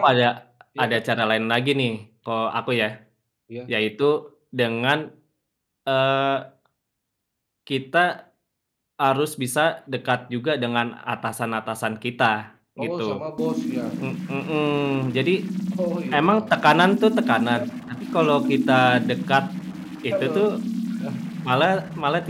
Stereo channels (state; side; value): identical; both; correlation 1.00